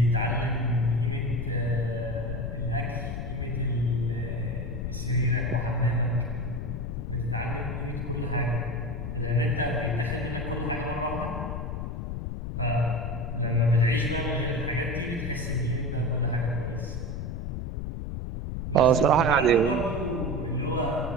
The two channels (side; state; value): left; noise; rumble, 4 dB below the sound